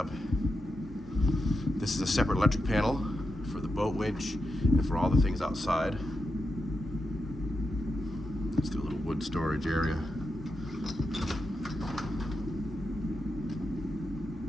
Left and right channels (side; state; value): both; normal; correlation 0.87